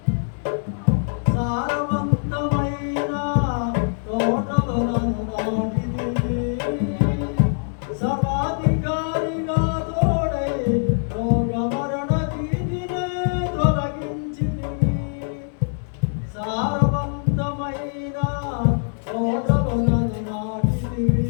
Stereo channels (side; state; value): right; silent; 63 dB below the other